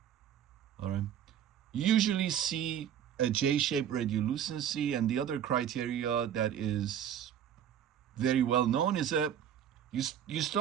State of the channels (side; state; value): left; quieter; 9.5 dB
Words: All right. You usually see a J-shaped radiolucency, and the other criteria that is very well known is that you